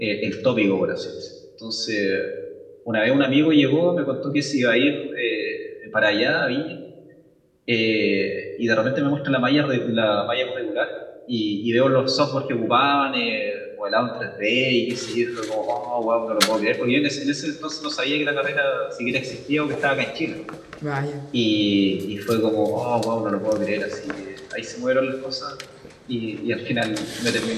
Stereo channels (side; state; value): both; identical; correlation 1.00